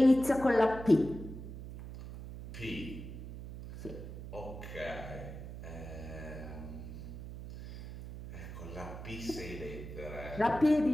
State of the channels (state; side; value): noise; right; hum, 10 dB below the sound